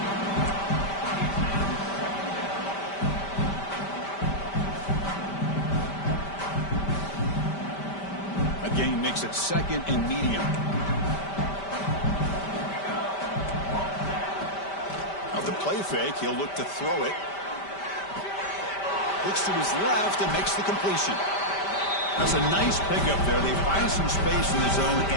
A gain makes it second and medium. Now the play fake, he'll look to throw it. Looks to his left and makes the completion. That's a nice pickup there. They find some space in the zone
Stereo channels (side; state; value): right; late; 5.1 ms